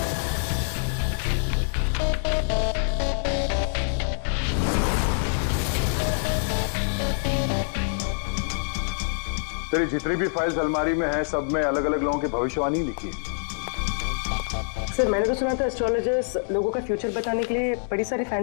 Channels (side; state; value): right; silent; 61 dB below the other